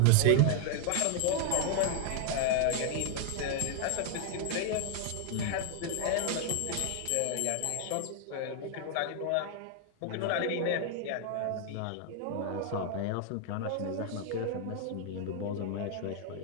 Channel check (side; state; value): both; different; correlation 0.00